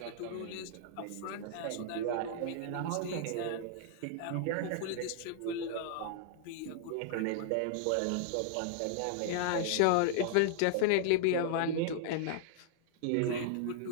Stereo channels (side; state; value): both; different; correlation -0.01